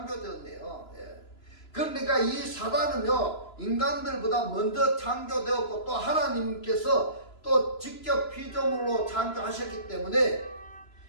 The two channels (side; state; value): right; late; 3.0 ms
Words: 예. 그러니까 이 사단은요 인간들보다 먼저 창조되었고 또 하나님께서 또 직접 피조물로 창조하셨기 때문에